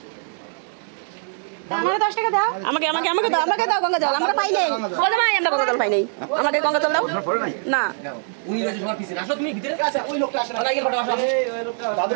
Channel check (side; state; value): left; silent; 64 dB below the other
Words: আমাকে 10 টাকা দাও আমাকে আমাকে আমাকে দাও আমাকে দাও গঙ্গা জল আমরা পাই নাই বলে ভাই আমরা গঙ্গা জল পাই নাই আমাকে গঙ্গা জল দাও না উনি গেছে সবার পিছনে আসো তুমি ভিতরে আচ্ছা ওই লোকটা আসে না লাইগের ফটো আসো এই লোকটা